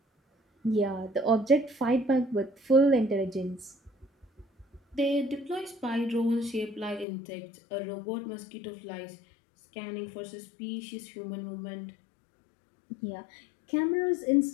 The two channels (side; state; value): right; drops out; at 7.1 s